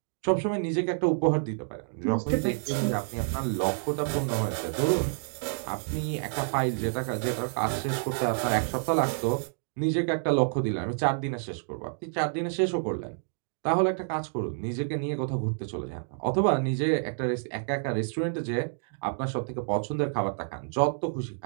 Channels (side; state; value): left; silent; digital silence